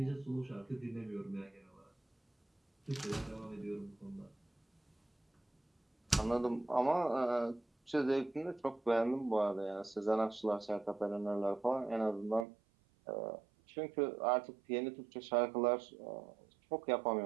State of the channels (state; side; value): drops out; left; at 12.5 s